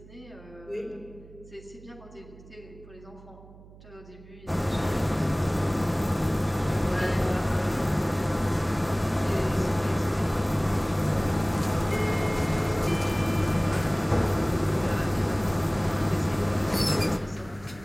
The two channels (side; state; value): right; noise; hum, 21 dB below the sound